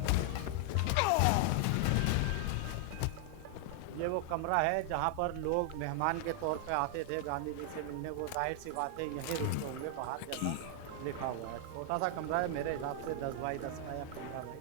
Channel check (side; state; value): both; different; correlation 0.00